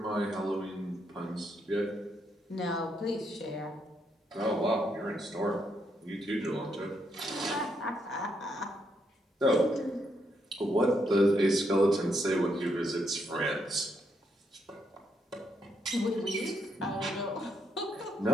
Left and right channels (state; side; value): normal; both; correlation 0.77